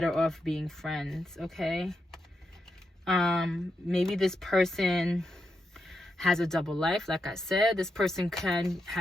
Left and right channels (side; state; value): both; normal; correlation 0.85